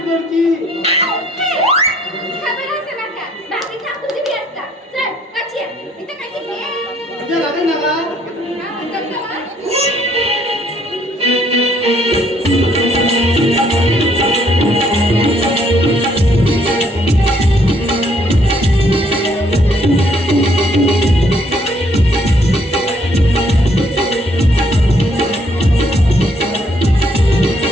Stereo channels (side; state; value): both; normal; correlation 0.66